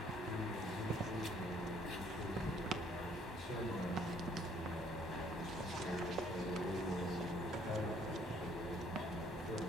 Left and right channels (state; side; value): normal; both; correlation 0.62